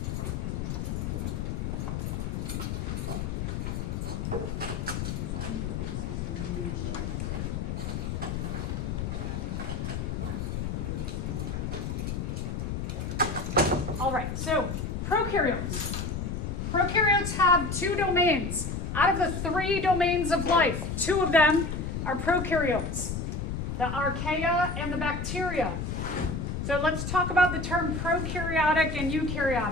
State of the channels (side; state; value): left; noise; rumble, 3 dB below the sound